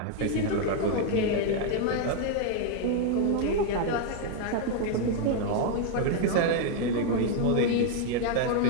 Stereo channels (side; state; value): both; different; correlation 0.00